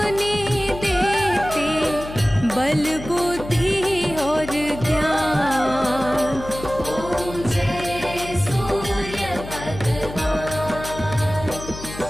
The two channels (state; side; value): noise; left; hum, 12 dB below the sound